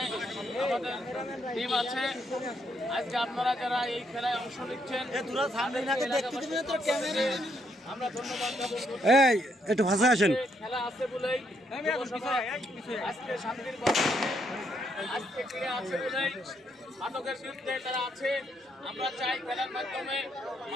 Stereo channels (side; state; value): both; normal; correlation 0.75